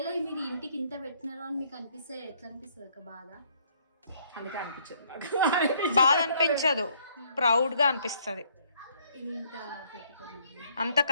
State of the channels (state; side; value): inverted; both; correlation -0.65